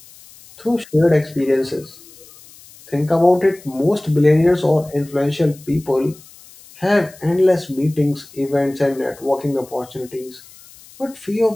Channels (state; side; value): noise; left; hiss, 23 dB below the sound